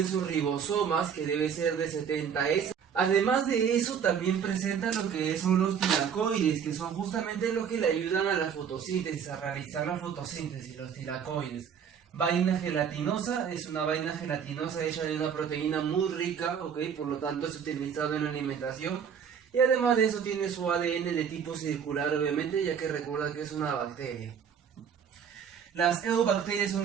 sus ribosomas, que debe ser de 70S. Además de eso, también presenta lo que son los tilacoides, que son justamente los que le ayudan a la fotosíntesis, a realizar la fotosíntesis, los tilacoides. Vaina gelatinosa, es una vaina gelatinosa hecha de una proteína muy rica, ¿ok? Por lo tanto es utilizado en la alimentación. Y además de eso tiene su ADN de tipo circular, obviamente, ya que recuerda que es una bacteria. Las eubacterias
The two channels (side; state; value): left; quieter; 7.5 dB